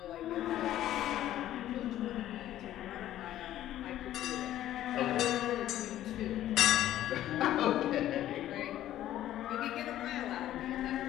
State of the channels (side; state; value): right; quieter; 12.9 dB